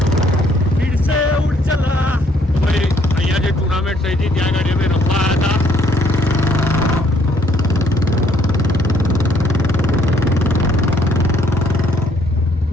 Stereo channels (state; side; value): normal; both; correlation 0.66